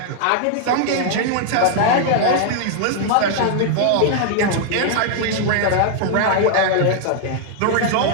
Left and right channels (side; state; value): both; different; correlation 0.00